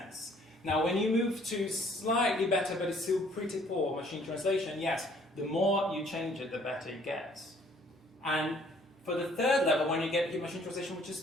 Now when you move to slightly better but it's still pretty poor machine translation, yes, the more you change it, the better it gets. And for the third level, when you get your machine translation, which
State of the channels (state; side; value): normal; both; correlation 0.59